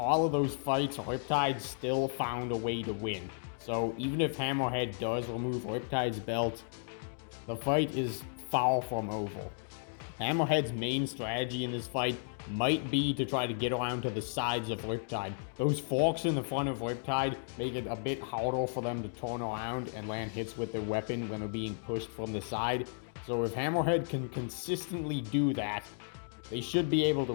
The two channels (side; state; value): right; silent; digital silence